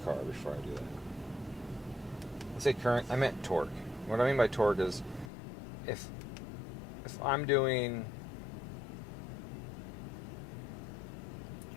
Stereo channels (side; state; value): right; drops out; at 5.3 s